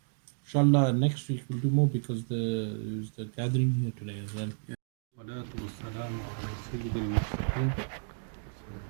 Inshallah, next week we'll do more, because there's the gathering here today as well.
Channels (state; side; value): silent; left; digital silence